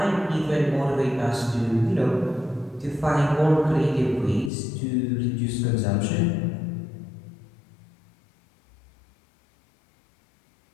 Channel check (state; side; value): drops out; right; at 4.5 s